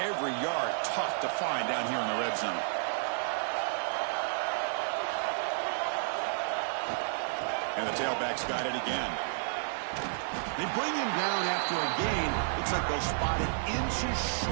yard tough to find down here in the red zone. And the tailback's got it again. They bring him down after a gain. Looks like they'll spot it inches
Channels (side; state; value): left; silent; digital silence